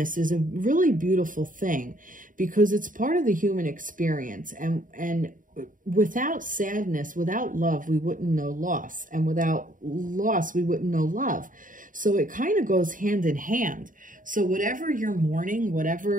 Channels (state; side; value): late; left; 0.39 ms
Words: is a really beautiful thing because it's part of the human experience. And without sadness, without love, we wouldn't know loss. And without loss, we wouldn't know love. So it kind of goes hand in hand. So whatever you're mourning,